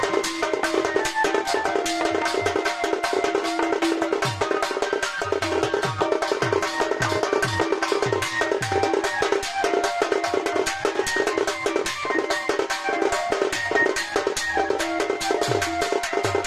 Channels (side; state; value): both; identical; correlation 1.00